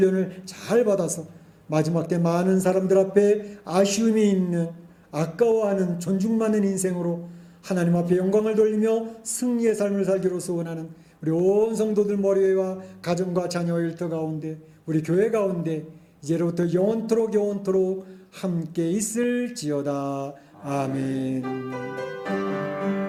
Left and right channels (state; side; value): identical; both; correlation 1.00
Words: 잘 받아서 마지막 때 많은 사람들 앞에 아쉬움이 있는, 아까워하는, 존중받는 인생으로 하나님 앞에 영광을 돌리며 승리의 삶을 살기로 소원하는 우리 온 성도들 머리와 가정과 자녀 일터 가운데 우리 교회 가운데 이제로부터 영원토록 함께 있을지어다. 아멘.